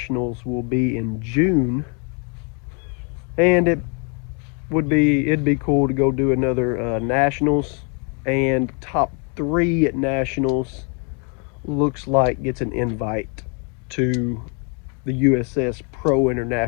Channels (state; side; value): quieter; right; 36.8 dB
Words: will be in June, and it'd be cool to go do another Nationals, and top 3 at Nationals looks like gets an invite to the USS Pro